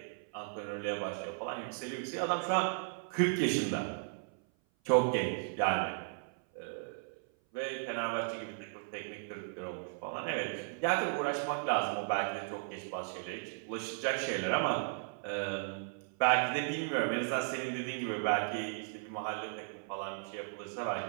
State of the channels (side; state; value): left; silent; 54 dB below the other